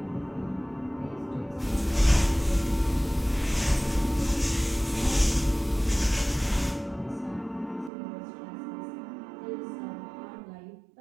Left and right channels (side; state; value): left; drops out; at 7.9 s